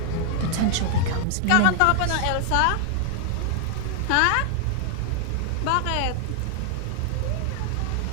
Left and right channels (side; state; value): both; different; correlation 0.00